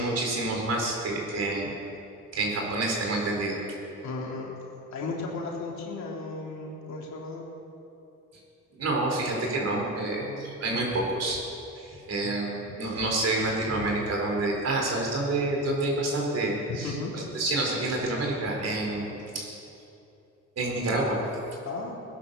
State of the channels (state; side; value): normal; both; correlation 0.22